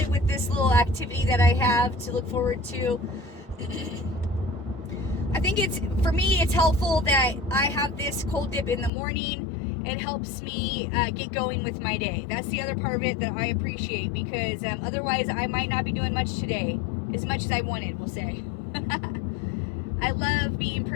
with this little activity that I have to look forward to. I think for me, it's helpful that I have this cold dip in the morning. It helps me get going with my day. That's the other part of it that I appreciate, because otherwise I might not be doing much today, as much as I wanted, we'll say. I love being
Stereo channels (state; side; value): drops out; right; at 8.9 s